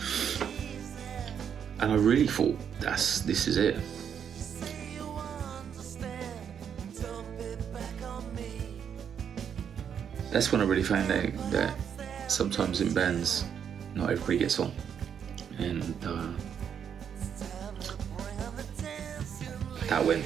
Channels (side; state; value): left; quieter; 8.0 dB